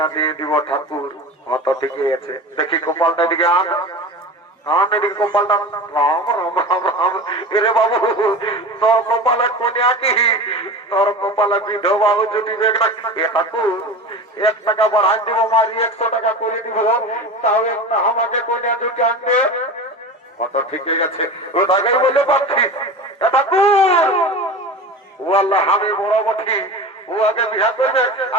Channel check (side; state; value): both; normal; correlation 0.31